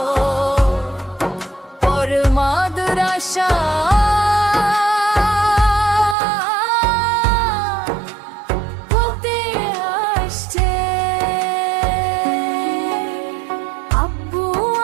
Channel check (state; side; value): drops out; left; at 6.2 s